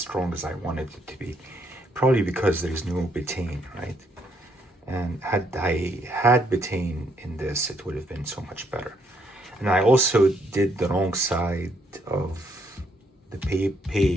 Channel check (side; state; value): both; normal; correlation 0.72